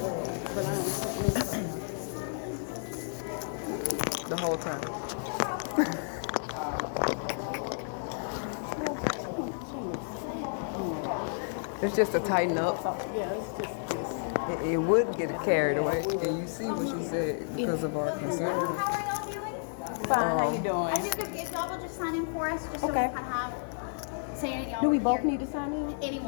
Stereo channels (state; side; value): silent; right; 57 dB below the other